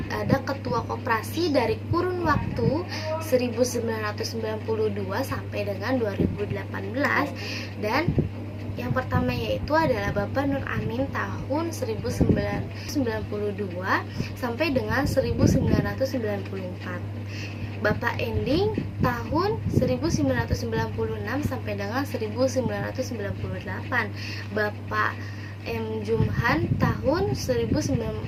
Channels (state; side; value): identical; both; correlation 1.00